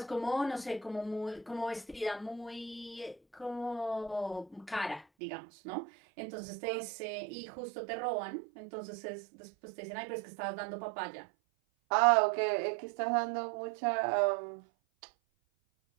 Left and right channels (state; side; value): drops out; left; at 5.1 s